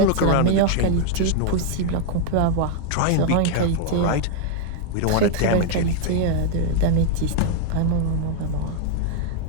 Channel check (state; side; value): different; both; correlation 0.00